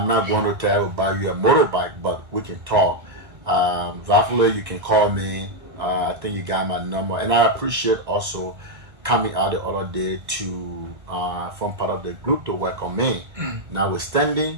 not going to tell you buy you a motorbike, but we can talk. Hopefully you can call me. I think you got my number. And I appreciate also coming out the other day to form part of the group to work on me. Notwithstanding,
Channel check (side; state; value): left; late; 2.0 ms